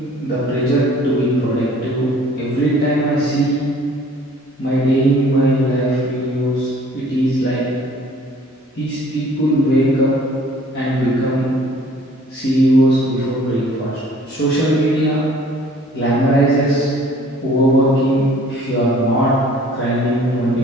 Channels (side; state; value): both; normal; correlation 0.54